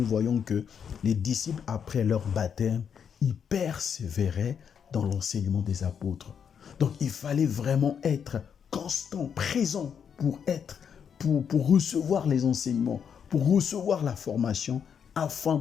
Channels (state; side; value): quieter; right; 7.5 dB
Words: voyons que les disciples, après leur baptême, ils persévéraient dans l'enseignement des apôtres. Donc, il fallait vraiment être constant, présent pour recevoir les enseignements, pour recevoir la formation, afin